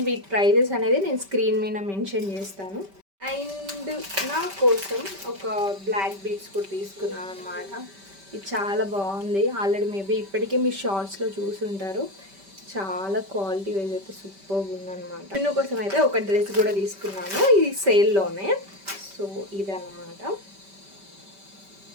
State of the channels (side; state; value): left; late; 5.1 ms